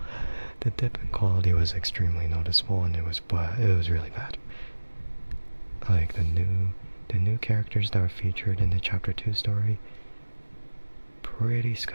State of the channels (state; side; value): inverted; both; correlation -1.00